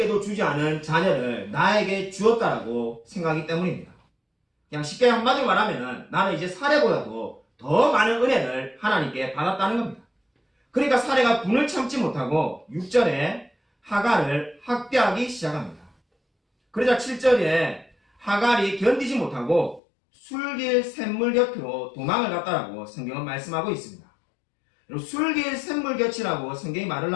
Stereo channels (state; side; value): drops out; right; at 19.8 s